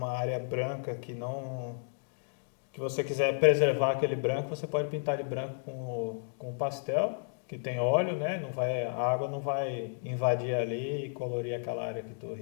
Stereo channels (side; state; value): right; silent; digital silence